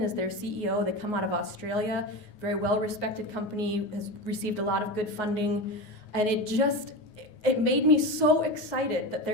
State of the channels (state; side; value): late; right; 9.5 ms